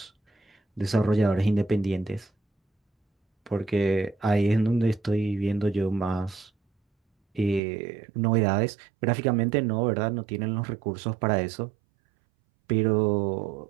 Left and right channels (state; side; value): drops out; left; at 7.6 s